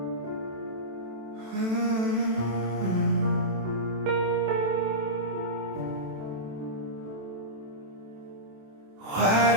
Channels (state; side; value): late; left; 27 ms